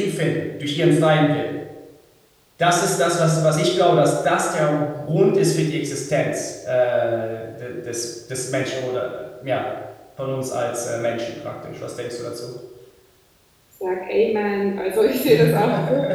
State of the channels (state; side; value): identical; both; correlation 1.00